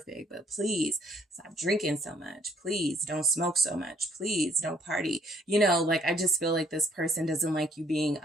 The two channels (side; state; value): both; normal; correlation 0.64